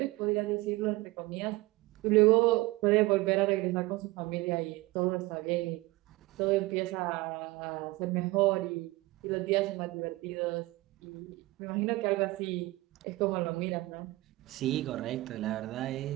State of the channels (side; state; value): left; quieter; 20.4 dB